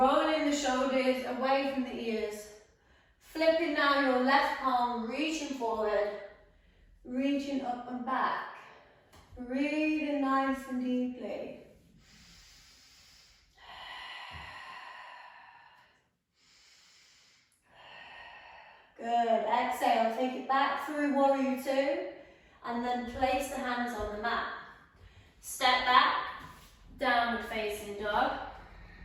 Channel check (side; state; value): both; identical; correlation 1.00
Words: the shoulders away from the ears. Flipping now your left palm, reaching forward, reaching up and back. Breathing nice and deeply. Good, exhale, take it back through warrior two. And then place the hands on the mat. Step back, downward facing dog.